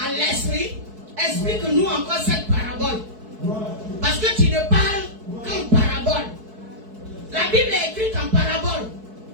l'esprit, explique-nous encore cette parabole. Parce que tu ne parles qu'en parabole. La Bible est écrite en parabole.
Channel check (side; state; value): left; late; 4.6 ms